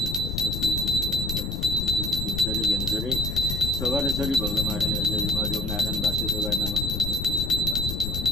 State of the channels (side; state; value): left; noise; rumble, 3 dB below the sound